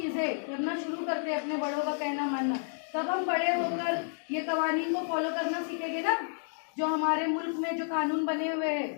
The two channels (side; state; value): right; silent; digital silence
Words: करना शुरू करते हैं, अपने बड़ों का कहना मानना, तब हम बड़े होकर ये कवानीन को फॉलो करना सीखेंगे ना। जो हमारे मुल्क में जो कानून बने हुए